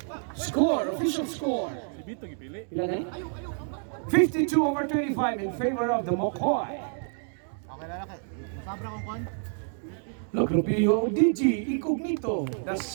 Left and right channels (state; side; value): silent; left; 59 dB below the other